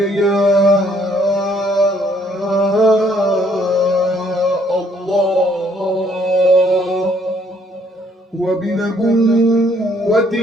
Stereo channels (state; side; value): normal; both; correlation 0.65